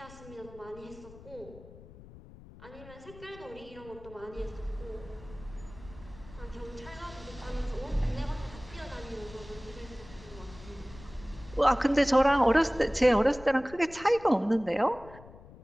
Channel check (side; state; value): left; noise; rumble, 19 dB below the sound